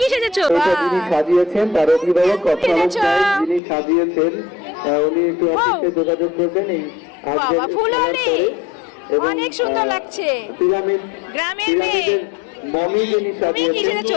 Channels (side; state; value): right; drops out; at 3.6 s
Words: সেজেছো? যিনি সাজিয়েছেন তার অভিভাবক কথা যিনি সাজিয়েছেন উনি একটু অফিসে যোগাযোগ করবেন। এই অনেক সুন্দর লাগছে। পিরামিড গ্রামের মেয়ে মমি যিনি সাজিয়েছেন